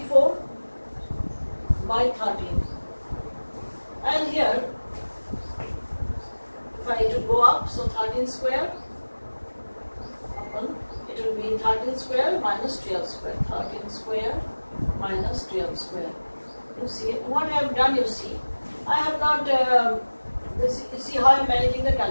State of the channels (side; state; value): both; inverted; correlation -1.00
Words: by 13. And here, if I to go up, so 13 square, it will be 13 square minus 12 square. 13 square minus 12 square. You see what I have done, you see. I have not, you see how I am managing the